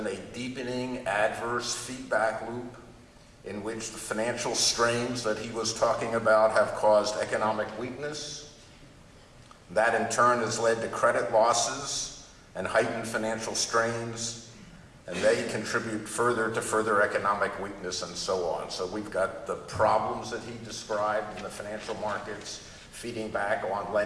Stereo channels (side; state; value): both; identical; correlation 1.00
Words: a deepening adverse feedback loop in which the financial strains that he was talking about have caused economic weakness. That in turn has led to credit losses and heightened financial strains, and they contribute further to further economic weakness and so on. So we've got the problems that he described in the financial markets feeding back on